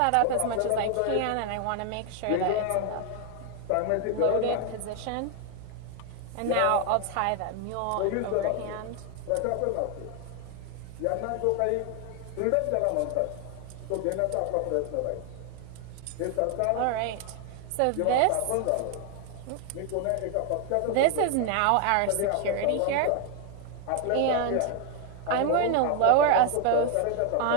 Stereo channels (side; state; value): both; different; correlation 0.00